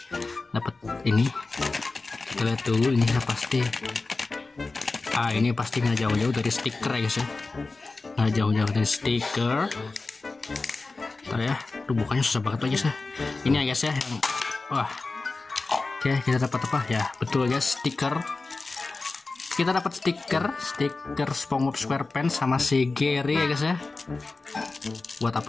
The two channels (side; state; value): right; quieter; 3.6 dB